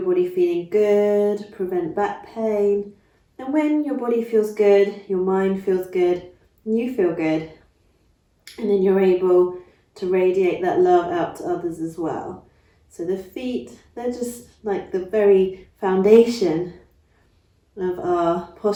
body feeling good, prevent back pain. And when your body feels good, your mind feels good, and you feel good. And then you're able to radiate that love out to others as well. So the feet, they're just like the very foundation of our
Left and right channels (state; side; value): identical; both; correlation 1.00